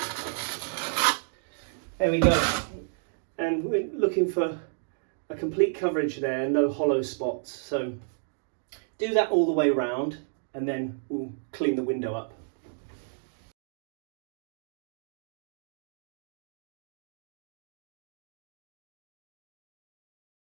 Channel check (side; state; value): left; silent; digital silence